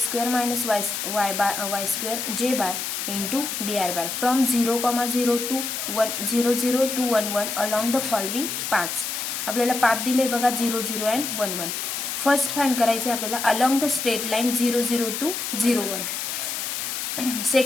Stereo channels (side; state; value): left; noise; hiss, 3 dB below the sound